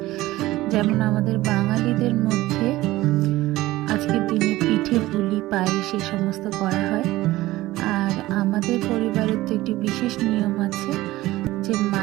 যেমন আমাদের বাঙালিদের মধ্যে আজকের দিনে পিঠে পুলি পায়েস সে সমস্ত করা হয়। আর আমাদের পরিবারের তো একটি বিশেষ নিয়ম আছে যে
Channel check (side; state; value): left; quieter; 17.3 dB